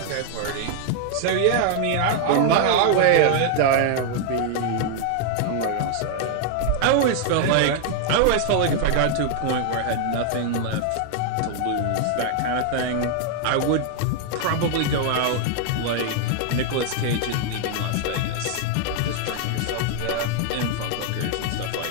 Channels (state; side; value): different; both; correlation 0.00